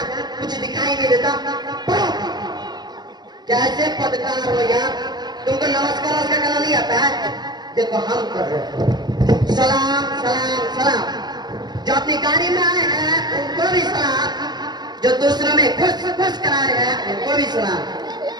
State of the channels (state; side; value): late; left; 0.20 ms